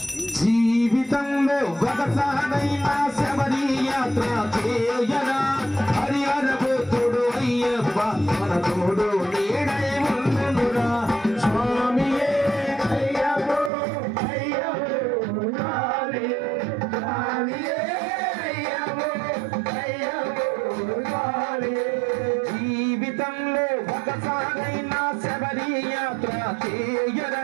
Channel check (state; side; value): drops out; left; at 13.7 s